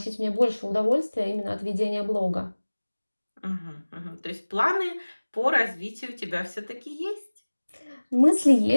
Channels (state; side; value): inverted; both; correlation -1.00